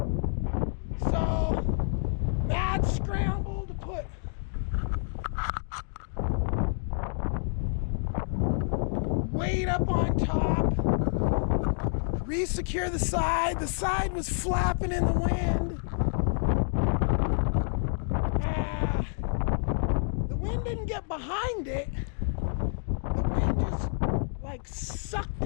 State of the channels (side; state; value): right; silent; digital silence